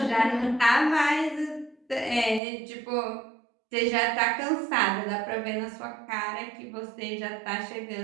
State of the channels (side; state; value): left; drops out; at 2.4 s